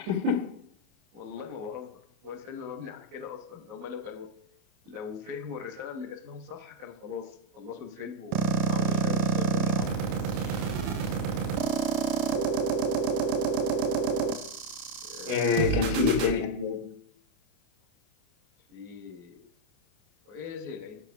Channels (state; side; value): late; left; 29 ms